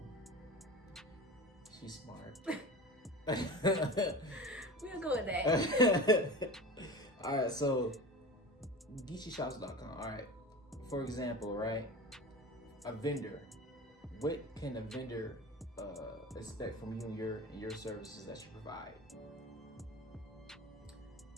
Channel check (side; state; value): both; normal; correlation 0.32